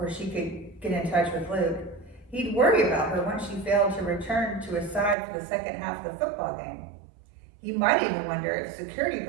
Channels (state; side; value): drops out; left; at 5.2 s